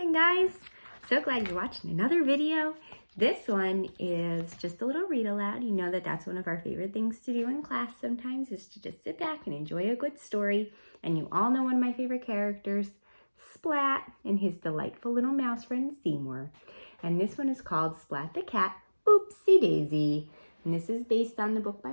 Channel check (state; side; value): inverted; both; correlation -1.00